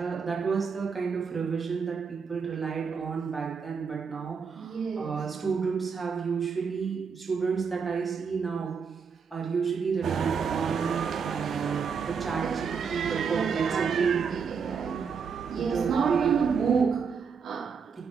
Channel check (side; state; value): left; quieter; 5.9 dB